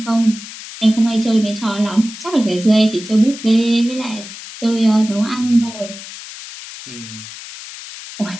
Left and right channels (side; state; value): left; noise; hiss, 13 dB below the sound